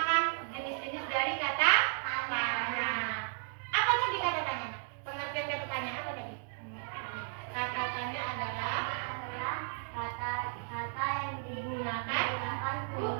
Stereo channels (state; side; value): silent; left; 55 dB below the other